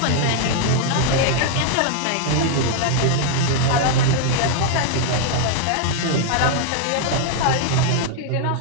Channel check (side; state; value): both; different; correlation -0.01